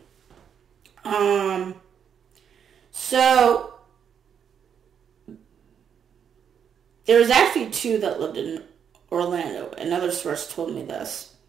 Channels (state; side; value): quieter; left; 7.9 dB